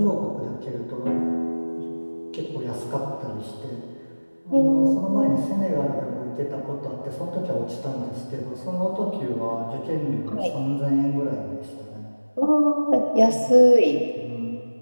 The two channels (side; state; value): both; inverted; correlation -1.00